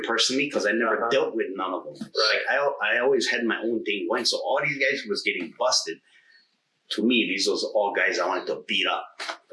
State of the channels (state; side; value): identical; both; correlation 1.00